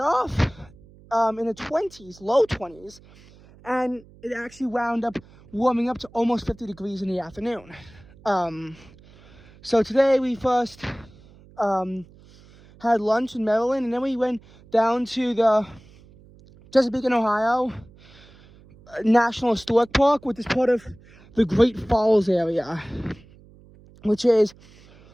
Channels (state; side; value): noise; right; hum, 25 dB below the sound